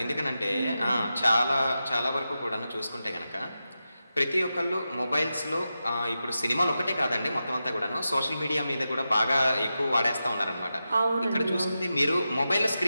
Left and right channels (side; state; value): both; inverted; correlation -0.91